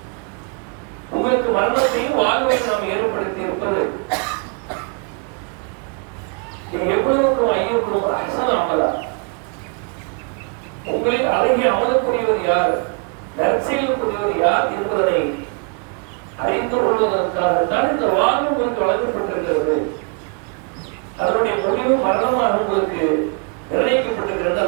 உங்களுக்கு மரணத்தையும் வாழ்வையும் நாம் ஏற்படுத்தி இருப்பது எவ்வளவுக்கும் ஐயோக்கும் அஹ்சன் அமலா, உங்களில் அழகிய அமலக்கூடியவர் யார், நற்செயலுக்குரியவர் யார் என்பதனை அறிந்து கொள்வதற்காகத்தான் இந்த வாழ்வு உங்களுக்கு வழங்கப்பட்டிருக்கிறது. அதனுடைய முடிவு மரணமாக உங்களுக்கு நிர்ணயிக்கப்பட்டிருக்கிறது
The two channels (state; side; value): quieter; left; 36.3 dB